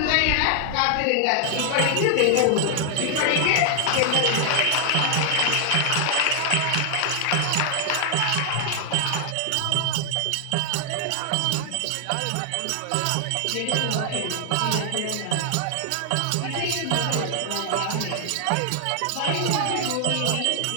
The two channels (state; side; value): different; both; correlation 0.00